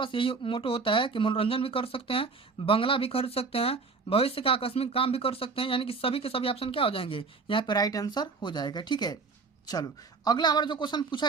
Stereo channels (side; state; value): left; quieter; 4.6 dB